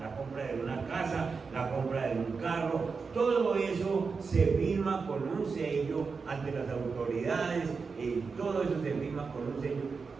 la compra de una casa, la compra de un carro, todo eso se firma con un sello ante las autoridades, y todo eso se firma con un sello.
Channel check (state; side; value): quieter; left; 4.9 dB